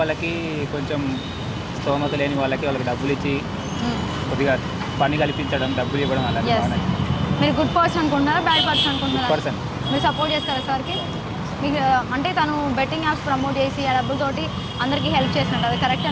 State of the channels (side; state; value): both; identical; correlation 1.00